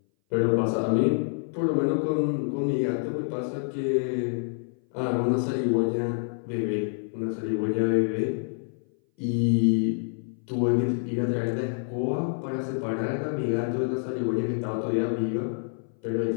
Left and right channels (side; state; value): right; silent; 58 dB below the other